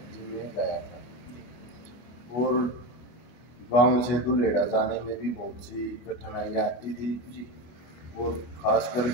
जिम में गया था। और गांव से दुलेड़ा जाने में भी बहुत सी कठिनाइयाँ आती थी और खास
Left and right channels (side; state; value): right; late; 25 ms